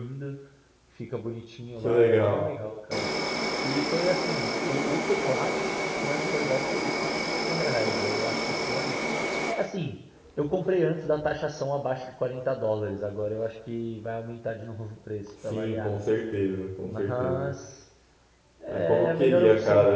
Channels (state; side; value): identical; both; correlation 1.00